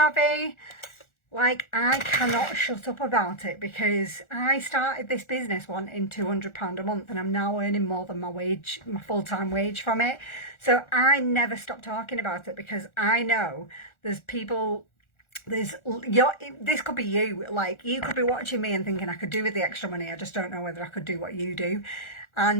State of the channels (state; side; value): late; right; 1.4 ms